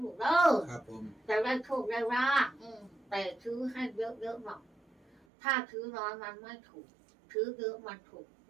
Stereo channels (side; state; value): left; drops out; at 5.2 s